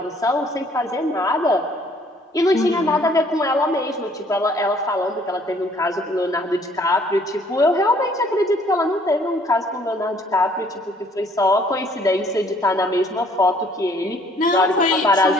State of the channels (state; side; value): normal; both; correlation 0.60